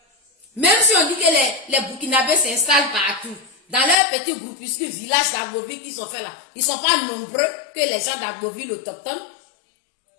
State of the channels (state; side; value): drops out; right; at 4.0 s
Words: Même si on dit que les Burkinabés s'installent partout, dans leur petit groupuscule village d'Agboville qui sont faits là, ils ne sont pas nombreux que les gens d'Agboville autochtones.